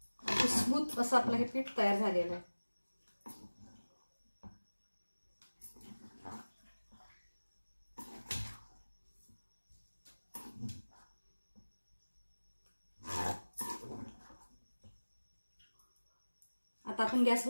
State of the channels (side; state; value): both; inverted; correlation -1.00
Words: स्मूथ असं आपलं हे पीठ तयार झालेलं आहे। आता आपण